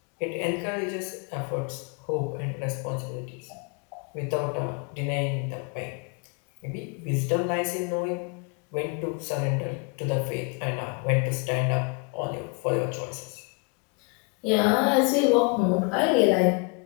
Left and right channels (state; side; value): quieter; right; 33.5 dB